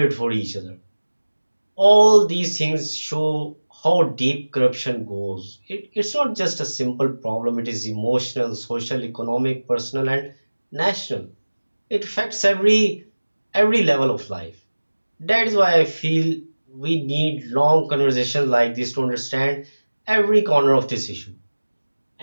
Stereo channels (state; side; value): inverted; both; correlation -1.00